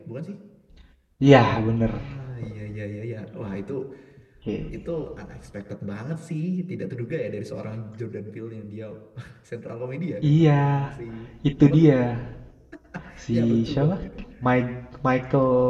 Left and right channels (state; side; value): identical; both; correlation 1.00